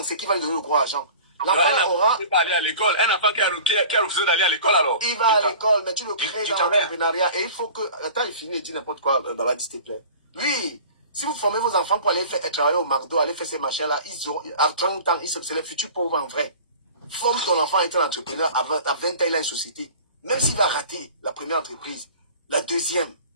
ce qui va lui donner le gros argent. L'enfant aura... Il va aller à l'école. Un enfant qui a refusé d'aller à l'école alors. Il va à l'école, mais tu le crées dans l'entrepreneuriat. Et il faut que... Attends, il finit et dit n'importe quoi, Babadi, s'il te plaît. Oui, si vous formez vos enfants pour aller travailler au McDo, aller faire ces machins-là, ils ont, à 30 ans, c'est les futurs pauvres en vrai. Forme ton enfant à être un entrepreneur, à 20 ans, il a une société. Même s'il va rater la première entreprise, la deuxième,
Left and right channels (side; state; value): both; inverted; correlation -0.42